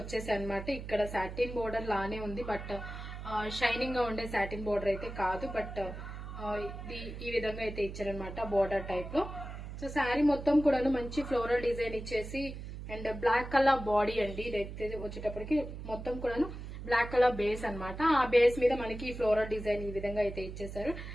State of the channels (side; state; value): right; noise; hum, 9 dB below the sound